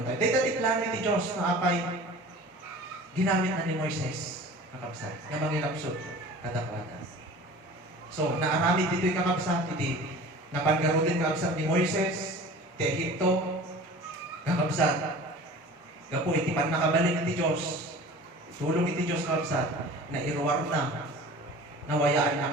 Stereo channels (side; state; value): both; normal; correlation 0.41